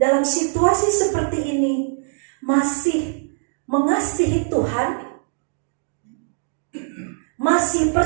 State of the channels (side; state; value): left; silent; digital silence